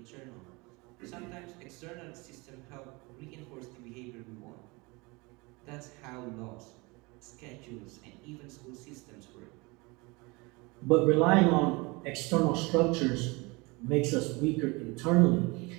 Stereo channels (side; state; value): left; quieter; 25.9 dB